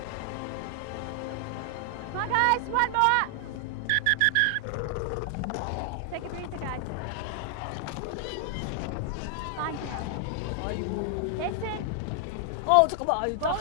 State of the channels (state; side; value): different; both; correlation 0.00